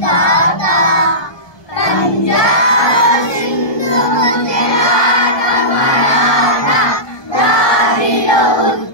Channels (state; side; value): late; right; 1.2 ms